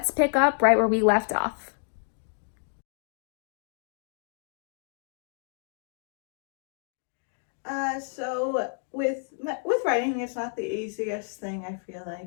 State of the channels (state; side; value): silent; right; 58 dB below the other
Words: pick up right where we left off. So with writing, it's not the easiest thing. I feel